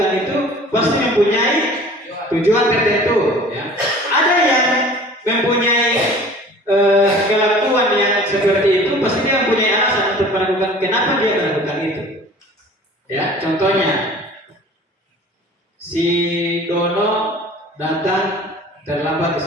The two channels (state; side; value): normal; both; correlation 0.46